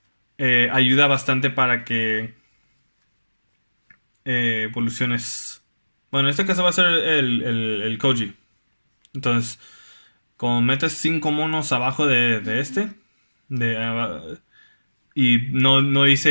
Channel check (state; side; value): inverted; both; correlation -1.00